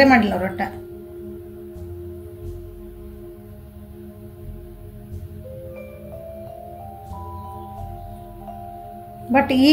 ಮಾಡಿಲ್ಲ ಅವ್ರ ಒಟ್ಟ. ಬಟ್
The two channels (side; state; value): both; identical; correlation 1.00